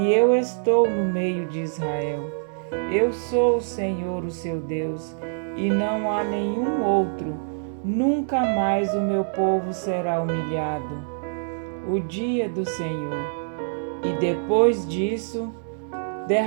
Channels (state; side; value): silent; left; digital silence